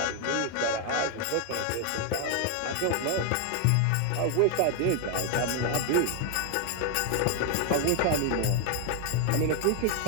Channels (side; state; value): both; different; correlation 0.00